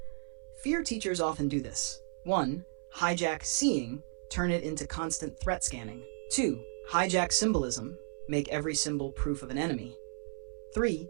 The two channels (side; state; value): left; silent; 55 dB below the other